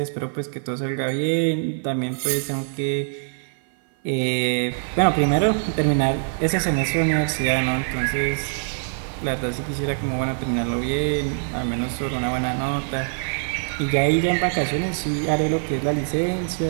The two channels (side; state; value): left; silent; 56 dB below the other